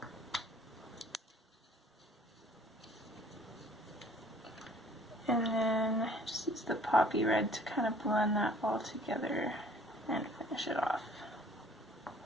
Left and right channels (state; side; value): normal; both; correlation 0.55